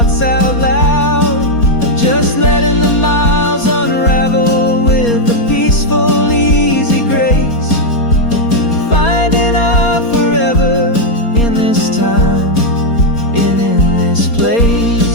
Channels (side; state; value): right; late; 4.3 ms